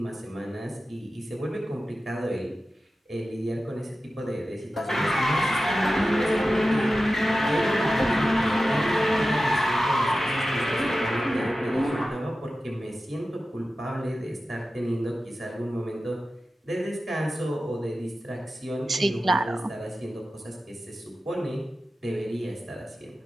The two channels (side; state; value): both; normal; correlation 0.94